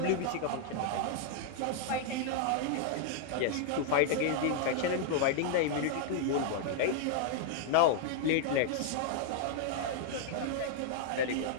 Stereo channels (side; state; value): both; different; correlation -0.01